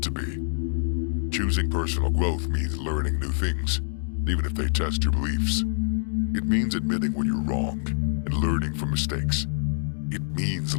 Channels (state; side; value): silent; right; digital silence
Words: to be? Choosing personal growth means learning new things, even if they test your beliefs. It means admitting when you're wrong and learning from mistakes. It means